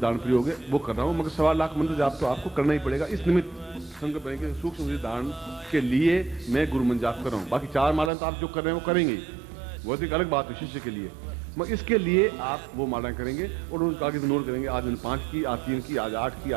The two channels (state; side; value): drops out; left; at 8.1 s